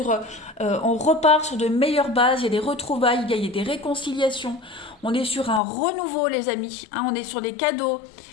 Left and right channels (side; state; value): right; drops out; at 5.6 s